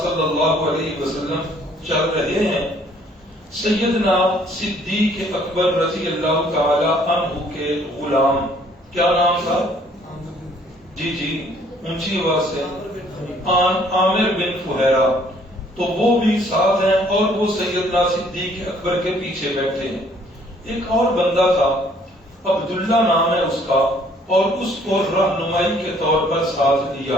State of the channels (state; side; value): normal; both; correlation 0.61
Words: اللہ علیہ وسلم چل رہے ہیں سیدنا صدیق اکبر رضی اللہ تعالی عنہ کے غلام، کیا نام تھا؟ جی اونچی آواز سے، عامر بن فہیرہ۔ تو وہ بھی ساتھ ہیں، اور وہ سیدنا صدیق اکبر کے پیچھے بیٹھے ہیں۔ ایک اور بندہ تھا، عبداللہ نام ہے اس کا، اور اس کو رہنمائی کے طور پر ساتھ